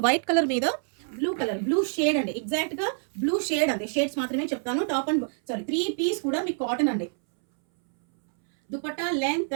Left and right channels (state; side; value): silent; left; 61 dB below the other